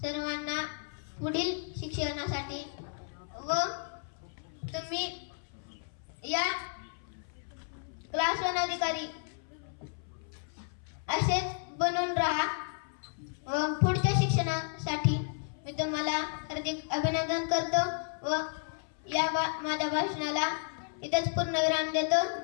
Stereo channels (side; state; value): right; silent; 56 dB below the other